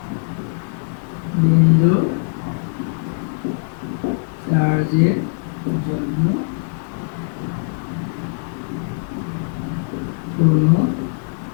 বিন্দু চার্জের জন্য কোনো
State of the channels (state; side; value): silent; right; digital silence